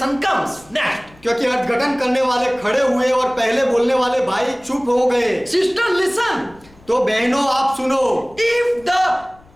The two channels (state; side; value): noise; left; rumble, 27 dB below the sound